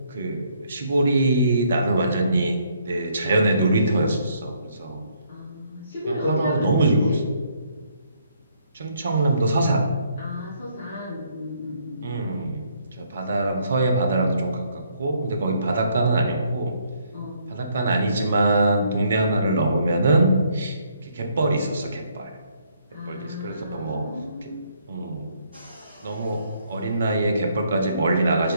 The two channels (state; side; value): inverted; both; correlation -0.69